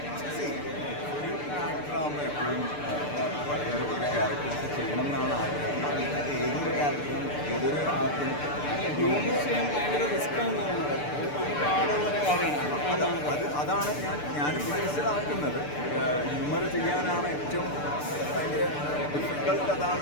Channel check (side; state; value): right; late; 6.8 ms